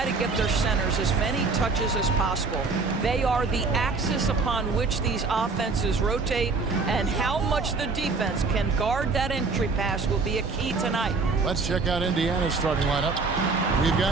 to get their centers as many touches as possible. They are the axis upon which these offenses rotate, and how much the defense can guard that entry pass will be a key tonight. Let's check out Indiana's starting lineup. We've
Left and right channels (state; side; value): quieter; left; 4.1 dB